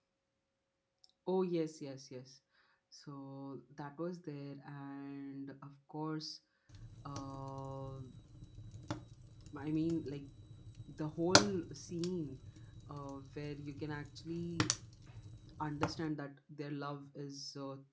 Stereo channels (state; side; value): identical; both; correlation 1.00